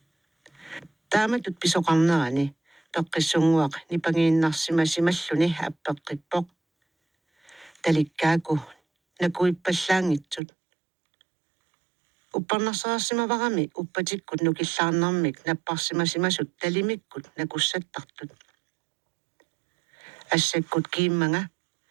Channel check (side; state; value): left; drops out; at 10.4 s